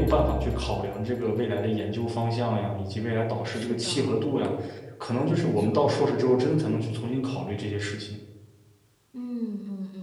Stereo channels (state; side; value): identical; both; correlation 1.00